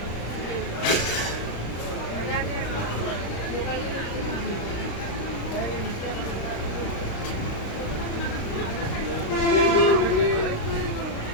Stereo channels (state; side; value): late; right; 35 ms